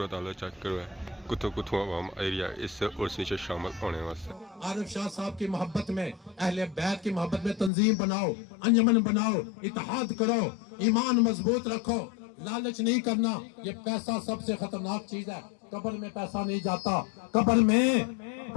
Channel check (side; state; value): right; drops out; at 7.7 s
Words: हाल चेक करो कुतों कुतों आवाम आई रही है इस उर्स नीचे शामिल होने वास्ते आरिफ शाह साहब की मोहब्बत में अहले बैत की मोहब्बत में तंजीम बनाओ अंजमन बनाओ इत्तेहाद करो ईमान मजबूत रखो लालच नहीं करना ये पैसा सबसे खतरनाक चीज है कब्र में पैसा नहीं जाता कब्र में